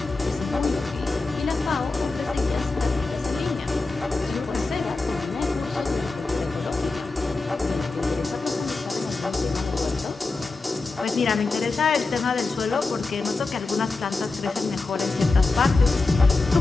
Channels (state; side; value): quieter; right; 3.6 dB